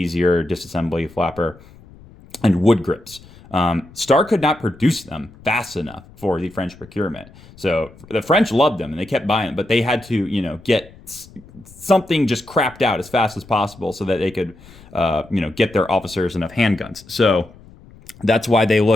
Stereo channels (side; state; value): left; noise; rumble, 23 dB below the sound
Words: disassembly flapper, and wood grips. Star could not produce them fast enough for the French procurement. So the French loved them and they kept buying them, but they had to, get something just crapped out as fast as possible so that they could, get their officers enough handguns. So that's why they